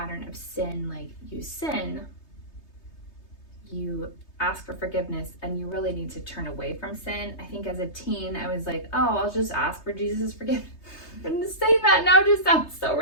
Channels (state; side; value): late; right; 3.3 ms